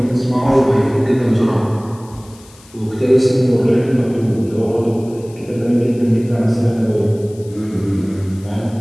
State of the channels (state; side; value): noise; left; hiss, 25 dB below the sound